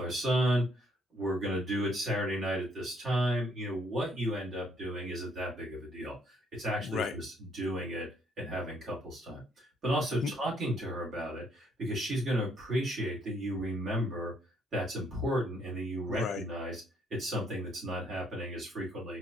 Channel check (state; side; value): normal; both; correlation 0.68